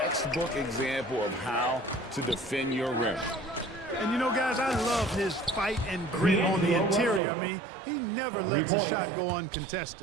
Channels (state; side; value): drops out; left; at 7.2 s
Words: example of how to defend your rim. And you know, guys, I love his fight and grit on the interior. I mean, he never lets a shot go